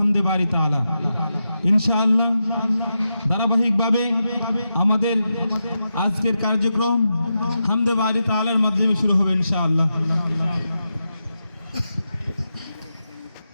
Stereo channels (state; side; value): inverted; both; correlation -0.88